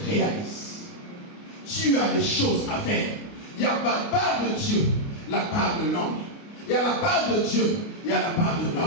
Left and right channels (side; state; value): right; late; 29 ms